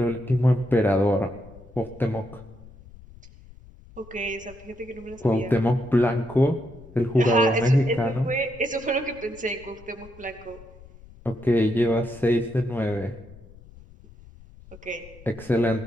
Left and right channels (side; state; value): left; noise; rumble, 21 dB below the sound